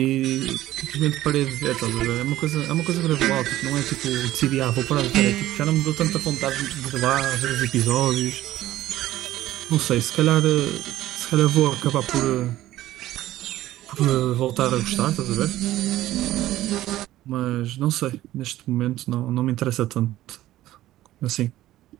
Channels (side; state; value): left; quieter; 14.8 dB